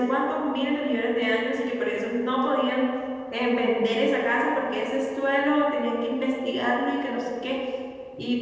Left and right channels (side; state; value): both; identical; correlation 1.00